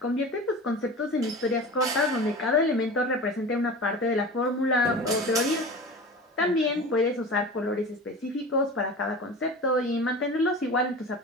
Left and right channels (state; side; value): normal; both; correlation 0.34